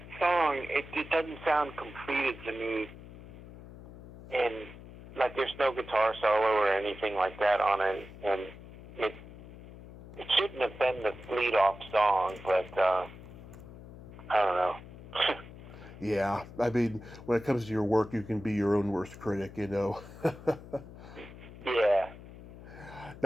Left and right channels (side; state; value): left; noise; hum, 16 dB below the sound